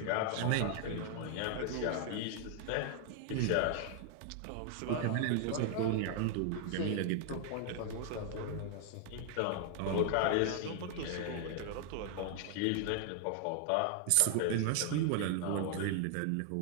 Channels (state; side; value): different; both; correlation 0.00